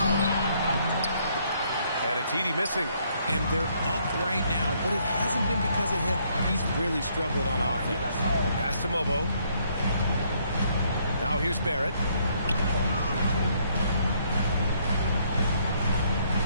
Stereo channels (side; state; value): both; inverted; correlation -0.69